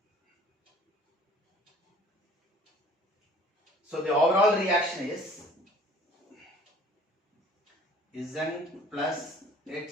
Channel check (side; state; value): both; normal; correlation 0.52